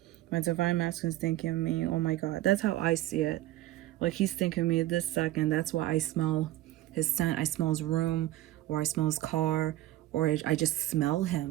My divine masculine is thinking of me. Oh my god. That's how I see it. Like, he's thinking of me this second. That's why I smell his scent. I smell his room, or I smell his car, or I just smell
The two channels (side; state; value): left; quieter; 15.0 dB